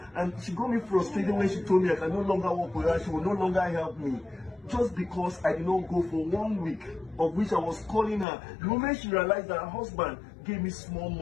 And she got me frustrated when she told me I can no longer work with her. She will no longer help me. Just because I did not go for 1 week, of which I was calling her. The moment she realized that her husband gave me small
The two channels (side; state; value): right; drops out; at 8.2 s